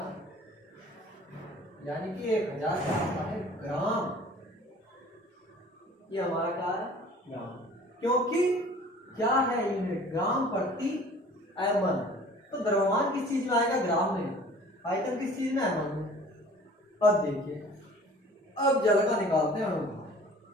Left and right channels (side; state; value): both; normal; correlation 0.48